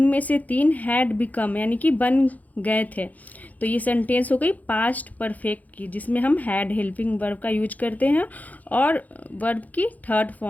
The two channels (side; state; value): right; late; 0.078 ms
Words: से 3 हैड बिकम यानी कि बन गए थे। तो ये सेंटेंस हो गई पास्ट परफेक्ट की, जिसमें हम हैड हेल्पिंग वर्ब का यूज करते हैं और वर्ब की थर्ड